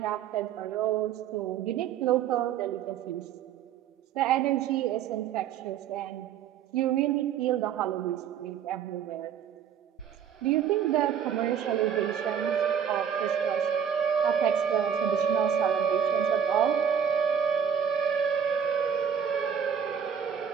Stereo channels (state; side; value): quieter; left; 8.2 dB